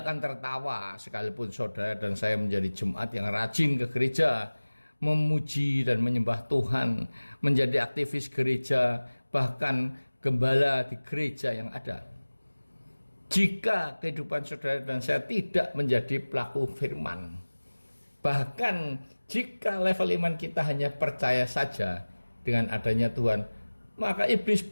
akan tertawa sekalipun saudara dan saya menjadi jemaat yang rajin ke gereja, memuji dan menyembah Tuhan, menjadi aktivis gereja, bahkan gembala di gereja yang ada. Jika kehidupan saudara dan saya tidak menjadi pelaku firman, bahkan jika level iman kita hanya percaya saja dengan adanya Tuhan, maka iblis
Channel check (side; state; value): both; inverted; correlation -1.00